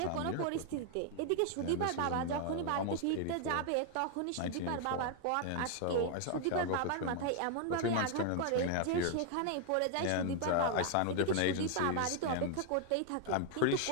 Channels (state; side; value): different; both; correlation 0.00